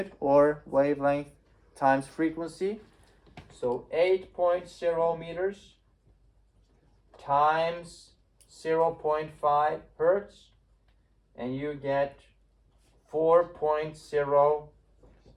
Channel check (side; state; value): both; identical; correlation 1.00